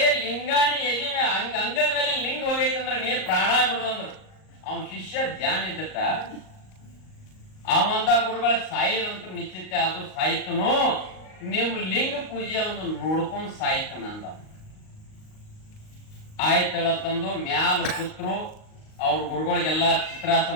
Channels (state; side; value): late; right; 38 ms